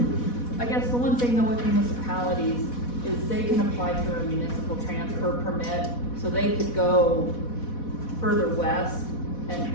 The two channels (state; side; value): late; right; 4.1 ms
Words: I guess the one thing though with municipalities is they can apply for a municipal transfer permit, so they could go further west